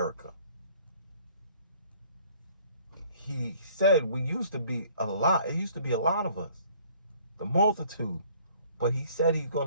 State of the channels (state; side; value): inverted; both; correlation -0.56